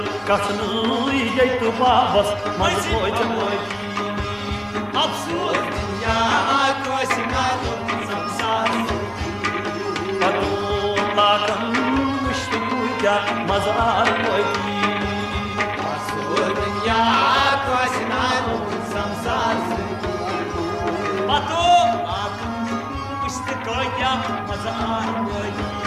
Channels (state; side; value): identical; both; correlation 1.00